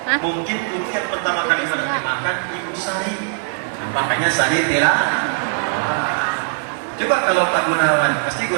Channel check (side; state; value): left; silent; 56 dB below the other